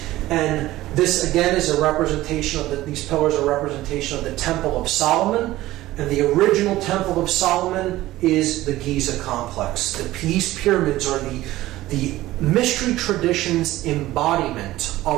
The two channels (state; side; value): quieter; left; 16.3 dB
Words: And this, again, is a representation of these pillars are a representation of the Temple of Solomon. And the original Temple of Solomon is the Giza complex. These pyramids are the mystery tradition's embodiment